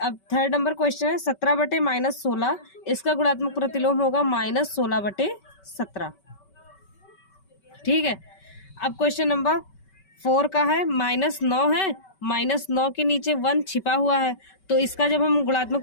3rd नंबर क्वेश्चन है 17/-16, इसका गुणात्मक प्रतिलोम होगा -16/17, ठीक है। अब क्वेश्चन नंबर 4 का है, -9 है, -9 के नीचे 1 छिपा हुआ है, तो इसका जब हम गुणात्मक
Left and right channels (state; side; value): late; right; 5.2 ms